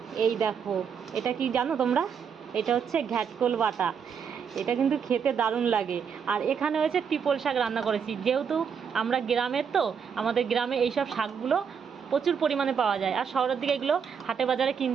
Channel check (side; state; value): left; quieter; 6.9 dB